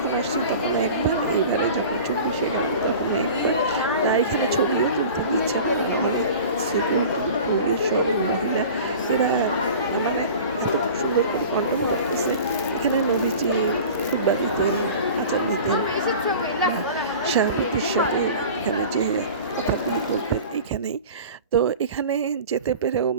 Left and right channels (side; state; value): both; inverted; correlation -0.40